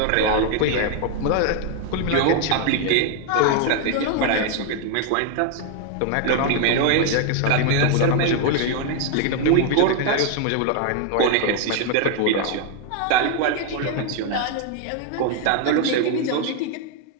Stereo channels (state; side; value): different; both; correlation 0.00